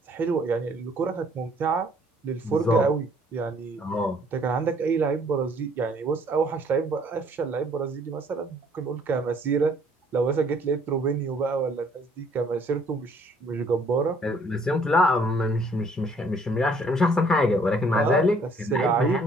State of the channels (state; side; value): normal; both; correlation 0.61